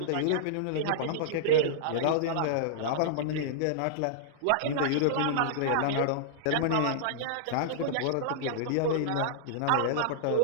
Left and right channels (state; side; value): different; both; correlation -0.02